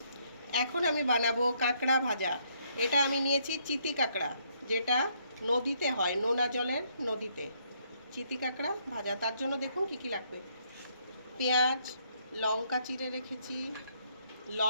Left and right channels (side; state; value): both; inverted; correlation -0.70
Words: এখন আমি বানাবো কাঁকড়া ভাজা। এটা আমি নিয়েছি চিতি কাঁকড়া, যেটা নদীতে হয়, নোনা জলের নদীতে। চিতি কাঁকড়া ভাজা, তার জন্য দেখুন কি কি লাগবে। পেঁয়াজ, লঙ্কা চিড়ে রেখেছি,